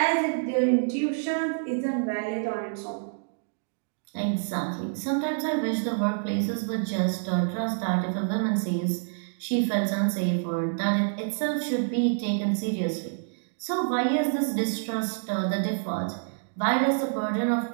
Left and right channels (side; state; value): left; silent; digital silence